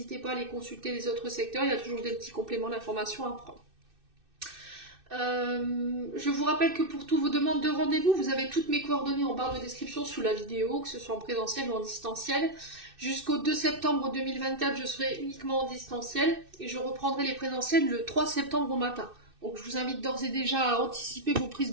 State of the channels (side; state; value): left; late; 2.6 ms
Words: pas à aller consulter les autres secteurs, il y a toujours des petits compléments d'information à prendre. Je vous rappelle que pour toutes vos demandes de rendez-vous, vous avez toutes mes coordonnées en barre de description sous la vidéo, que ce soit en présentiel ou en distanciel. Jusqu'au 2 septembre 2024, je serai uniquement en distanciel et je reprendrai les présentiels le 3 septembre au matin. Donc je vous invite d'ores et déjà à anticiper vos prises